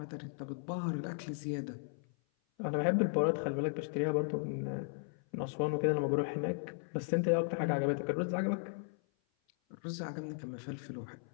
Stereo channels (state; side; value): silent; right; 54 dB below the other